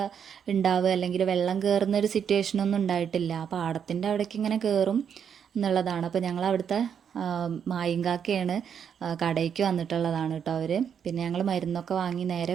ഉണ്ടാവുക അല്ലെങ്കിൽ വെള്ളം കയറുന്ന ഒരു സിറ്റുവേഷനൊന്നും ഉണ്ടായിട്ടില്ല. പാടത്തിൻ്റെ അവിടേക്ക് ഇങ്ങനെ കയറും എന്നുള്ളതാണ്. അപ്പോൾ ഞങ്ങൾ അവിടുത്തെ മായിങ്കാക്കയാണ് കടയ്ക്ക് വന്നിട്ടുള്ളതാണ് കേട്ടോ അവർ. പിന്നെ ഞങ്ങൾ മരുന്നൊക്കെ വാങ്ങി നേരെ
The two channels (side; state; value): left; quieter; 7.8 dB